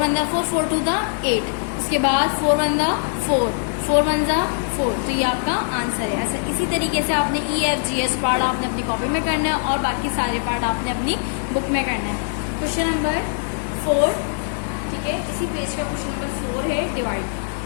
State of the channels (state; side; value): silent; right; digital silence